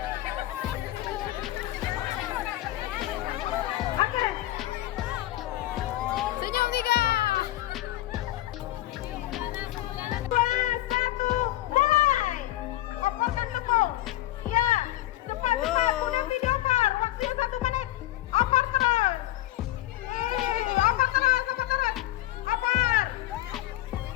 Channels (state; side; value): quieter; right; 15.6 dB